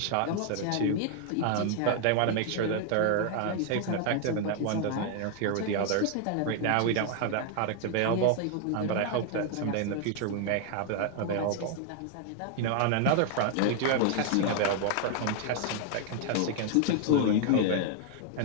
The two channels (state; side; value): different; both; correlation 0.00